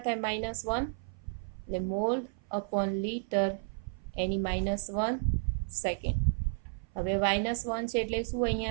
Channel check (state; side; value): silent; left; 55 dB below the other